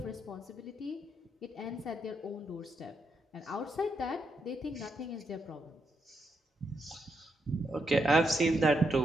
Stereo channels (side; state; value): both; normal; correlation 0.80